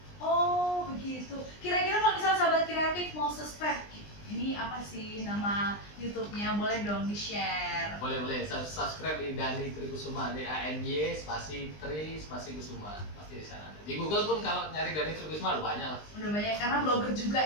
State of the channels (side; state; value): right; late; 20 ms